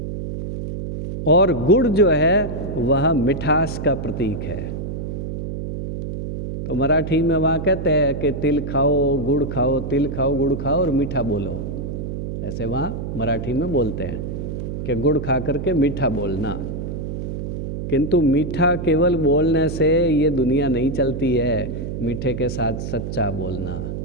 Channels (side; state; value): right; noise; hum, 5 dB below the sound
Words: और गुड़ जो है वह मिठास का प्रतीक है। तो मराठी में वहाँ कहते हैं कि तिल खाओ गुड़ खाओ, तिल खाओ गुड़ खाओ और मीठा बोलो। ऐसे वहाँ मराठी में बोलते हैं कि गुड़ खा करके मीठा बोलना। किंतु मीठा केवल बोलने से ये दुनिया नहीं चलती है। मीठे के साथ सच्चा बोलना,